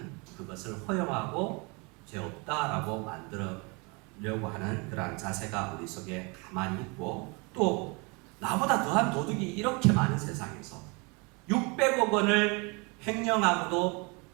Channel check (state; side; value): quieter; left; 29.9 dB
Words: 그것을 허용하고 죄 없다라고 만들려고 하는 그러한 자세가 우리 속에 가만히 있고, 또 나보다 더한 도둑이 이렇게 많은 세상에서 600억 원을 횡령하고도